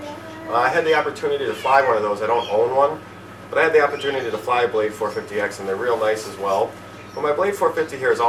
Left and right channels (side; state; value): both; identical; correlation 1.00